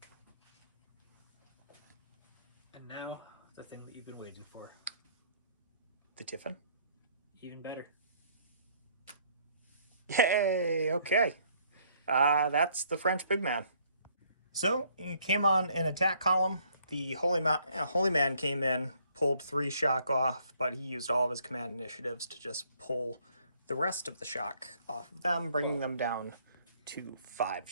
And now, the thing that you've been waiting for. The Tiffin. Even better. Yay! Okay. That's the French big man. So, he came on an attack column. The Holy Man came in, pulled 3 shock off, but he used all of his command initiatives to just pull the rest of the shock off of them, bringing them down to 5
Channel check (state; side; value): inverted; both; correlation -0.64